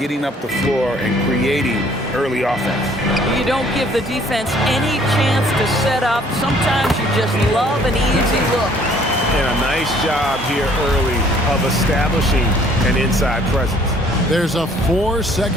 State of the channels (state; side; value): normal; both; correlation 0.59